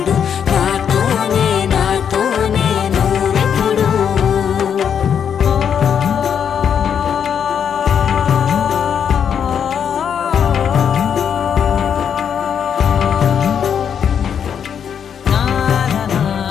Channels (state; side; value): quieter; right; 7.9 dB